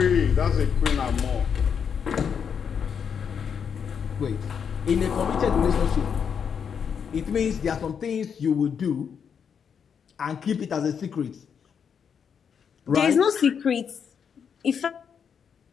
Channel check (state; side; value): quieter; right; 7.1 dB